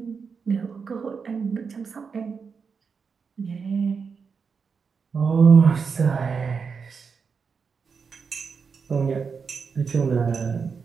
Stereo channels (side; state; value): left; quieter; 5.6 dB